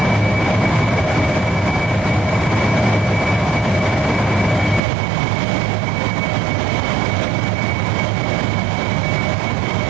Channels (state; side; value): drops out; left; at 4.8 s